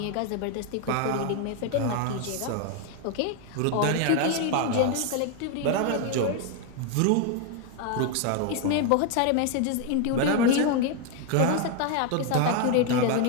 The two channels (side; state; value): both; different; correlation 0.01